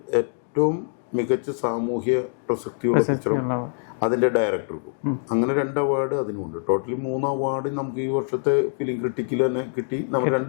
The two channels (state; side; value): silent; right; digital silence